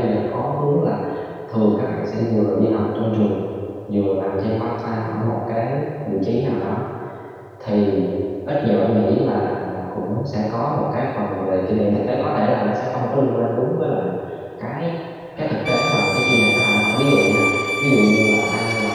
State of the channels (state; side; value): identical; both; correlation 1.00